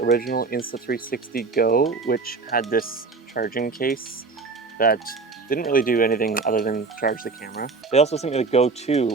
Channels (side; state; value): left; quieter; 4.2 dB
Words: Insta360 Go, which had this charging case that didn't really do anything other than charge the camera. They also sent me the Go